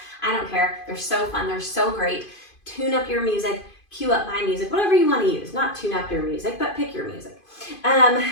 I don't care. They're so fun. They're so great. Tune up your music, cue up my music, whatever you want to use. Not tune up your music, but pick your music.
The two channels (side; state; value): right; late; 2.5 ms